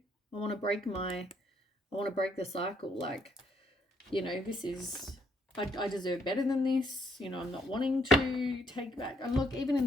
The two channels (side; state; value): both; normal; correlation 0.70